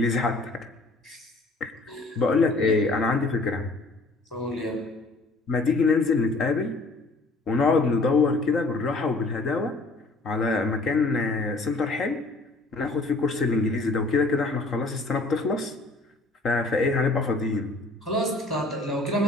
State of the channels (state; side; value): quieter; right; 3.1 dB